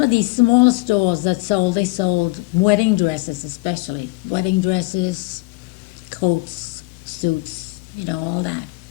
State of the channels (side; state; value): right; quieter; 24.5 dB